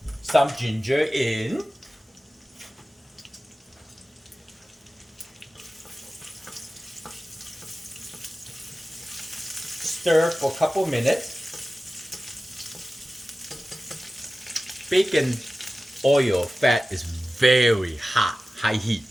Some ginger in. Stir for a couple minutes. Bacon oil fat is very hot, high heat.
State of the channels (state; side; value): normal; both; correlation 0.95